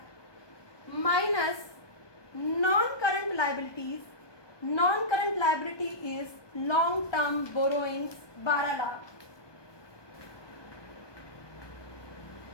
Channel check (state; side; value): late; right; 1.2 ms